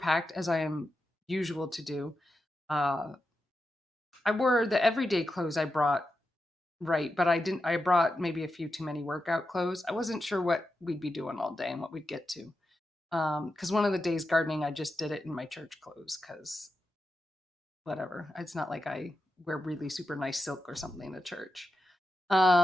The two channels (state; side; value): normal; both; correlation 0.89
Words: as I am usual to do. Uh, I wore the everyday clothes I brought, right, but I brought maybe a few too many workout clothes. I wasn't sure what we'd be doing all day and what we'd get to. Because one of the days gardening, I just did it in my church clothes because whatever. It's not like I wear really super nice silk or something to church.